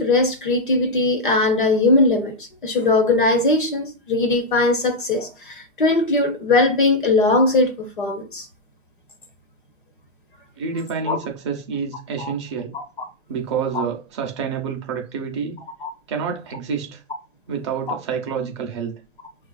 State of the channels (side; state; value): both; normal; correlation -0.02